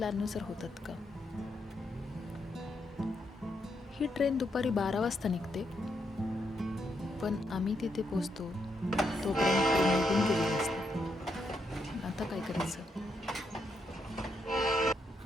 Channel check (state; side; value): normal; both; correlation 0.79